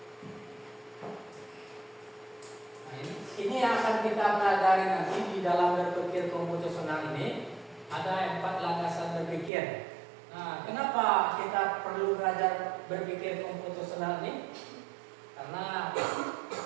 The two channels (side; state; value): left; drops out; at 9.5 s